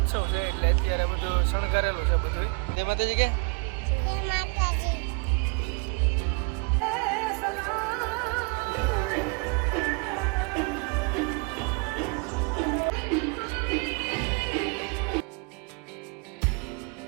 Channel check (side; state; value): left; quieter; 32.0 dB